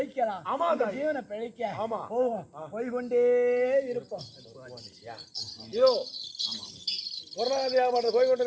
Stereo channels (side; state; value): both; identical; correlation 1.00